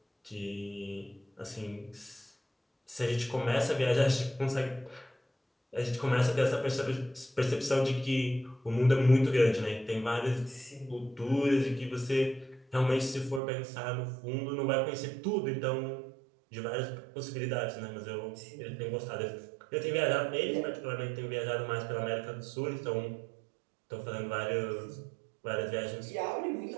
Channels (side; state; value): left; drops out; at 13.4 s